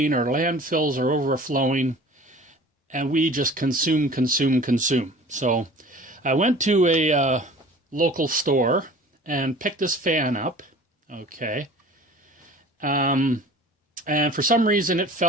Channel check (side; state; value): both; normal; correlation 0.44